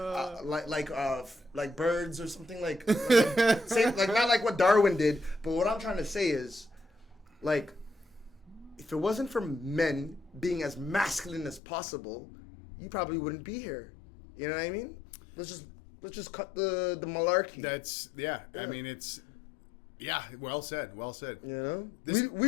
like birds or something like not like what Darwin did. But what I'm trying to say is, like, if it wasn't for men being as masculine as possible, you probably wouldn't be here. You know what I mean? Let's just cut the malarkey. I mean, it's. Yeah, well said. You know,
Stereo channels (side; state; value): right; drops out; at 11.6 s